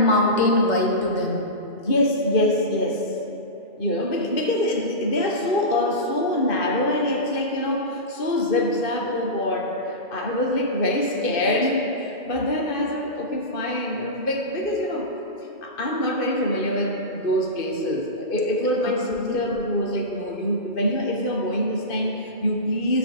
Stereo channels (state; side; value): late; right; 2.5 ms